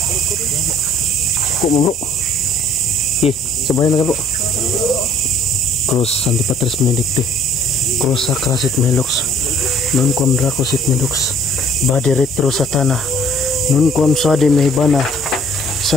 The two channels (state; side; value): normal; both; correlation 0.57